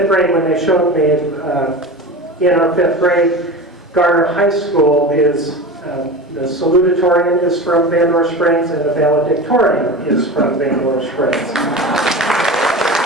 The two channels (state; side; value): normal; both; correlation 0.30